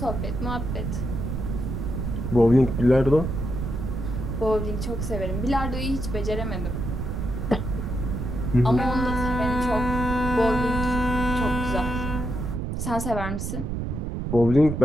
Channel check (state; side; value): noise; right; rumble, 3 dB below the sound